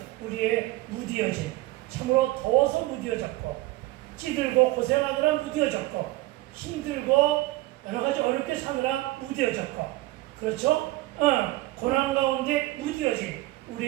우리의 무디어짐, 참으로 더워서 무디어졌고 찌들고 고생하느라 무디어졌고 힘들고 여러가지 어렵게 사느라 무디어졌고 그렇죠? 고난 가운데 무디어진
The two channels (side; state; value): left; quieter; 18.9 dB